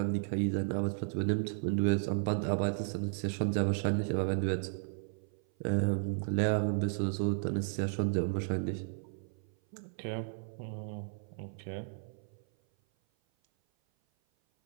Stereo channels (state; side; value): silent; left; 55 dB below the other